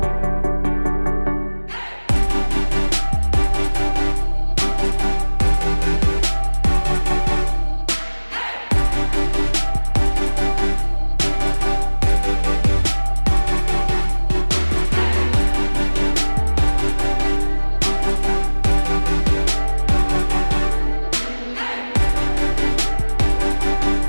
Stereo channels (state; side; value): inverted; both; correlation -1.00